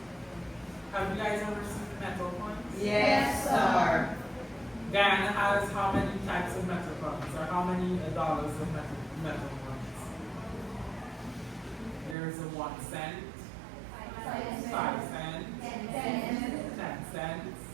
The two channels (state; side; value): drops out; left; at 12.2 s